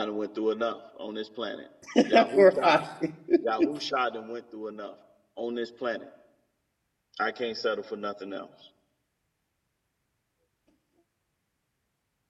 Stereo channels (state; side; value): identical; both; correlation 1.00